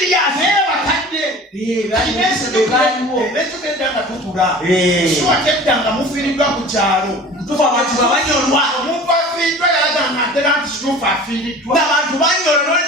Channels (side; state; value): both; normal; correlation 0.41